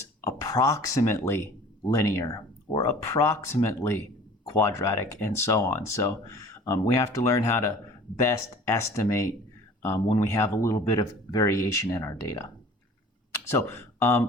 approximately linear or approximately quadratic and so on. So we have to learn how to best estimate when we have a little bit of variation in our data. So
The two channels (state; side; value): normal; both; correlation 0.46